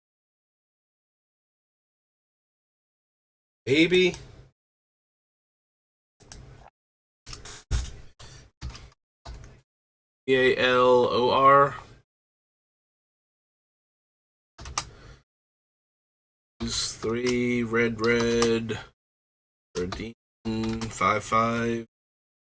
maybe. Balor. Use 3 red. Redeem 5/5.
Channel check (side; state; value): both; identical; correlation 1.00